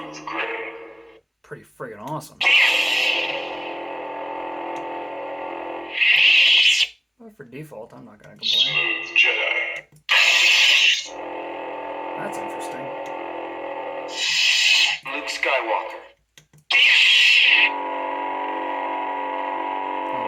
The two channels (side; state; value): both; identical; correlation 1.00